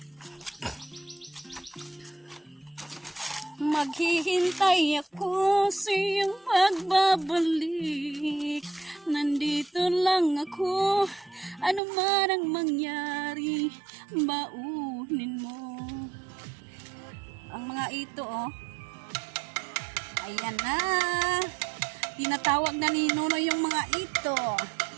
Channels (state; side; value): drops out; left; at 11.8 s